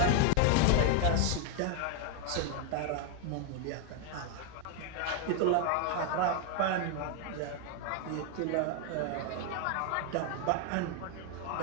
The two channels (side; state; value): both; different; correlation 0.01